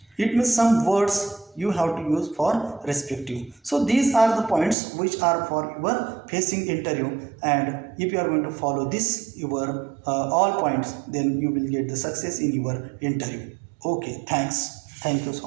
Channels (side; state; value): left; drops out; at 4.8 s